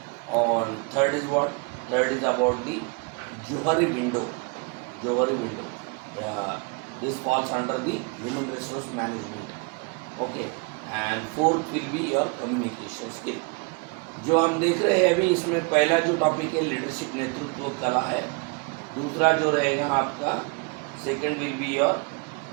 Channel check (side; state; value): left; quieter; 31.3 dB